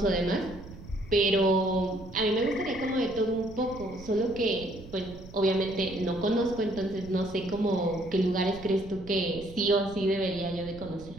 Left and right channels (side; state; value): right; noise; rumble, 16 dB below the sound